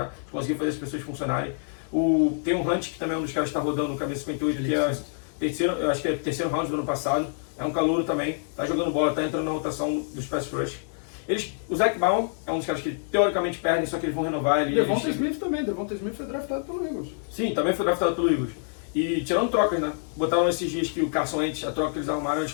conseguir fazer as pessoas funcionarem. Tem o Hunt, que também é um dos caras que está rodando no camisa 58, que é terceiro, eu acho que é terceiro round do ano passado. É um calouro também, está jogando bola, está entrando na rotação dos pass rush. O Zach Baum é um dos caras que teoricamente perdem, só que eles vão renovar. Devonta Smith também, Devonta Smith foi draftado pelo Eagles. Sim, também foi draftado pelo Eagles. E tirando trocas, né? Botaram esses dias que o Carson Wentz, a troca que eles arrumaram, eles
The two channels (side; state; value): right; silent; 61 dB below the other